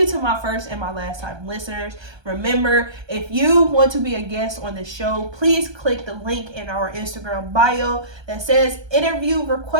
to my first and my last time listeners. Remember, if you want to be a guest on the show, please click the link in our Instagram bio that says interview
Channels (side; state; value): left; late; 1.3 ms